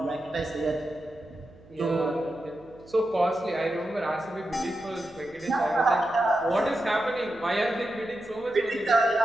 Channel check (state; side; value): noise; right; hum, 24 dB below the sound